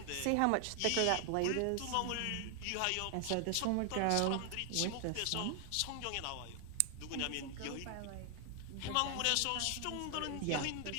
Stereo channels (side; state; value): both; different; correlation 0.00